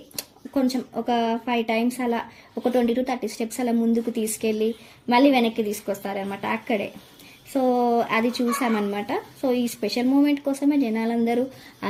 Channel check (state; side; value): identical; both; correlation 1.00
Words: కొంచెం ఒక 5 times అలా ఒక 20 to 30 steps అలా ముందుకు తీసుకెళ్ళి మళ్ళీ వెనక్కి తీసుకొస్తారనమాట అక్కడే. సో అది చూసామన్నమాట. సో ఈ స్పెషల్ మూమెంట్ కోసమే జనాలందరూ ఆ